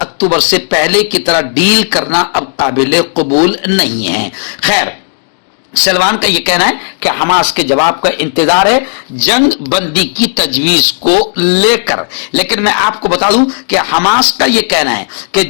اکتوبر سے پہلے کی طرح ڈیل کرنا اب قابل قبول نہیں ہے۔ خیر، سلوان کا یہ کہنا ہے کہ حماس کے جواب کا انتظار ہے جنگ بندی کی تجویز کو لے کر، لیکن میں آپ کو بتا دوں کہ حماس کا یہ کہنا ہے کہ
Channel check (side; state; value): right; silent; digital silence